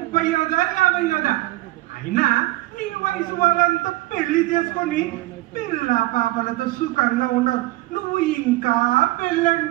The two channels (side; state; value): left; quieter; 18.6 dB